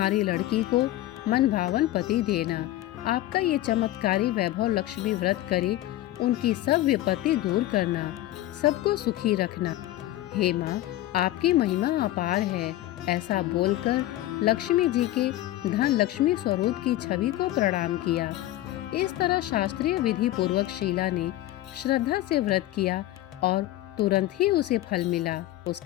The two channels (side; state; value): right; quieter; 15.2 dB